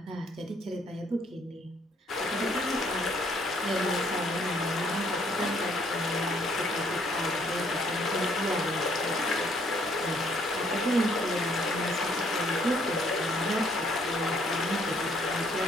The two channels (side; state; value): both; normal; correlation 0.65